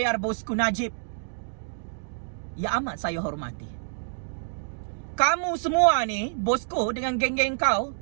bosku Najib. Ya amat saya hormati. Kamu semua ni, bosku, dengan geng-geng kau,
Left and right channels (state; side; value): silent; left; digital silence